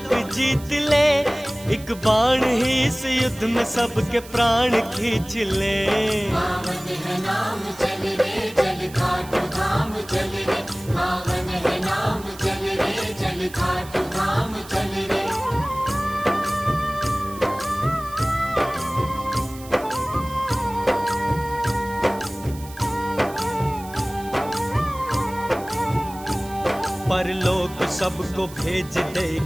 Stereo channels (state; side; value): noise; right; hiss, 18 dB below the sound